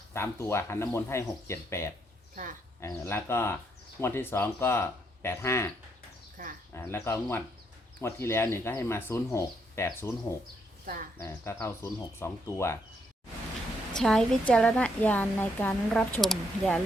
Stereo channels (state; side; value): normal; both; correlation 0.74